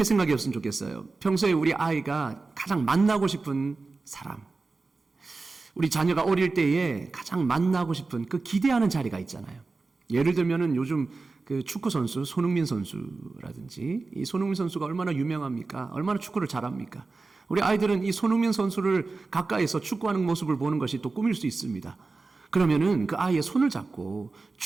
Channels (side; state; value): left; quieter; 3.8 dB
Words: 생각했으면 좋겠어요. 평소에 우리 아이가 가장 만나고 싶은 사람, 우리 자녀가 어릴 때에 가장 만나고 싶은 그 기대하는 자리가 있잖아요. 예를 들면은 요즘 그 축구 선수 손흥민 선수라든지, 이 손흥민 선수가 얼마나 유명합니까? 얼마나 축구를 잘합니까? 우리 아이들은 이 손흥민 선수를 가까이서 축구하는 모습을 보는 것이 또 꿈일 수 있습니다. 그러면은 그 아이의 손을 잡고